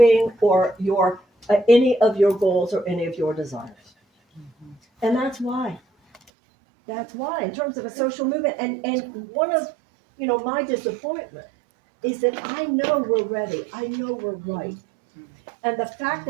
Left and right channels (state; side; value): drops out; left; at 6.2 s